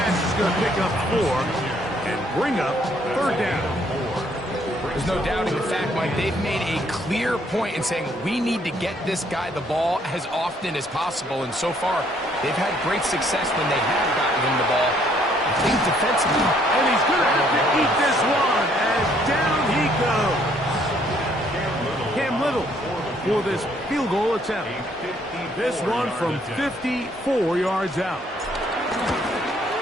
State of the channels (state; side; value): normal; both; correlation 0.66